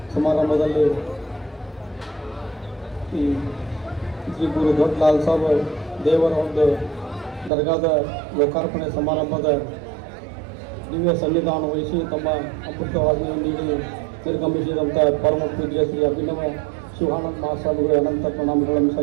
ಸಮಾರಂಭದಲ್ಲಿ ಈ ಶ್ರೀ ಗುರು ದೊಡ್ಡ ಲಾಲ್ ಸಾಬ್ ದೇವರ ಒಂದು ದರ್ಗಾದ ಲೋಕಾರ್ಪಣೆ ಸಮಾರಂಭದ ದಿವ್ಯ ಸನ್ನಿಧಾನ ವಹಿಸಿ ತಮ್ಮ ಅಮೃತವಾದಿಯನ್ನು ನೀಡಿ ನಿರ್ಗಮಿಸಿದಂಥ ಪರಮ ಪೂಜ್ಯ ಶ್ರೀ ಅಭಿನವ ಶಿವಾನಂದ ಮಹಾಸ್ವಾಮಿಗಳು ಅನಂತ ಪ್ರಣಾಮಗಳನ್ನು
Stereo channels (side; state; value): left; drops out; at 7.5 s